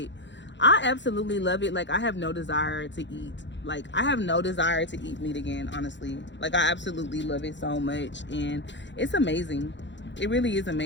I absolutely love it. Like, I have no desire to eat. Like, I have no desire to eat meat again, honestly. Like, I absolutely love it so much, and it's amazing. It really is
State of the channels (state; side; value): late; right; 0.52 ms